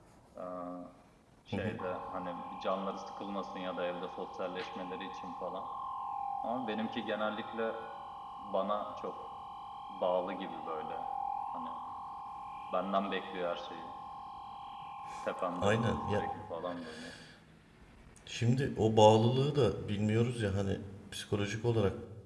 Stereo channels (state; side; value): identical; both; correlation 1.00